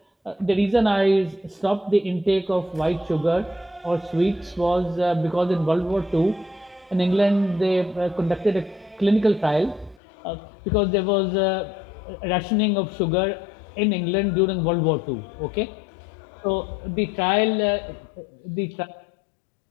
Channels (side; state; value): right; drops out; at 10.0 s